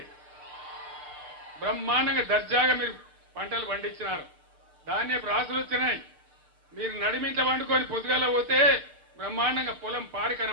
బ్రహ్మాండంగా దర్జాగా మీరు పంటలు పండించినారు. ధాన్యపు రాసులు వచ్చినాయి. మీరు నడిమింట వండుకొని పొద్దుగాల పోతే బ్రహ్మాండంగా పొలం పారి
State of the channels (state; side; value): late; left; 6.6 ms